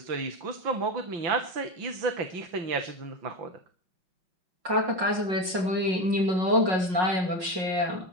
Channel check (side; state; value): left; late; 5.5 ms